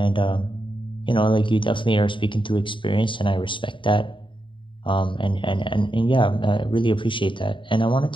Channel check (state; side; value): late; right; 0.24 ms